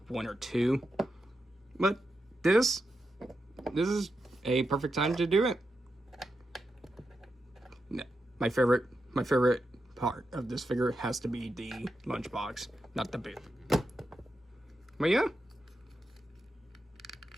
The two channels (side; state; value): both; normal; correlation 0.87